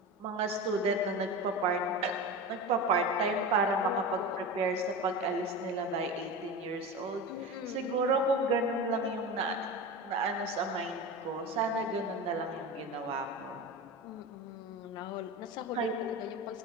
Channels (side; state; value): both; normal; correlation 0.27